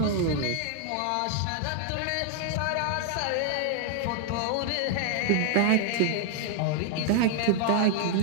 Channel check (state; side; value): different; both; correlation 0.00